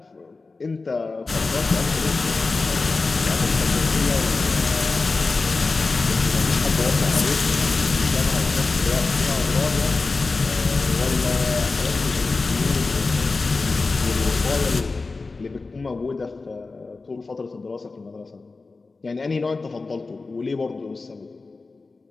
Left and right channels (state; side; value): quieter; right; 3.8 dB